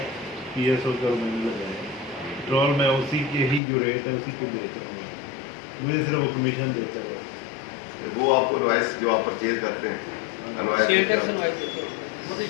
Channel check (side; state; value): right; drops out; at 3.6 s